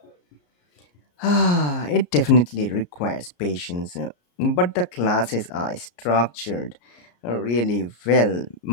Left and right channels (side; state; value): right; late; 34 ms